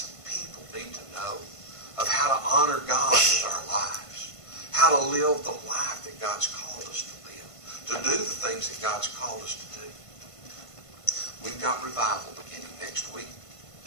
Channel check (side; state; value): right; late; 1.5 ms